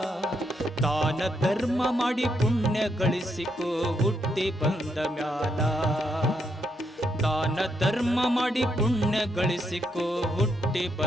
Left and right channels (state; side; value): normal; both; correlation 0.78